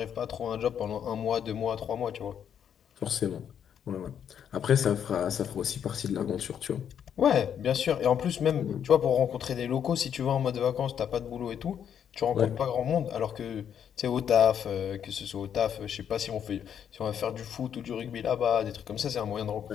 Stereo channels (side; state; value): right; quieter; 8.7 dB